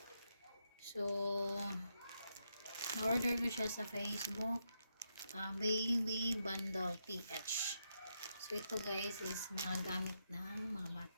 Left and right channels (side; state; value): both; inverted; correlation -0.82